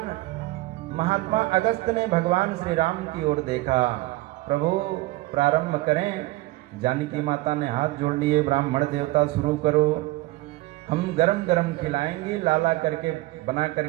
महात्मा अगस्त ने भगवान श्री राम की ओर देखा, प्रभु प्रारंभ करें। जानकी माता ने हाथ जोड़ लिए, ब्राह्मण देवता शुरू करो, हम गरम गरम खिलाएंगी, लाला करके बना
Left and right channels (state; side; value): quieter; left; 19.2 dB